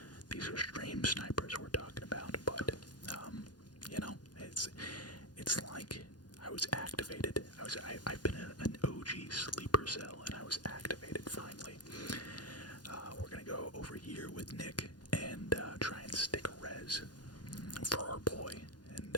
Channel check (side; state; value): right; late; 0.69 ms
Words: these are stream snipers we're talking about, but it's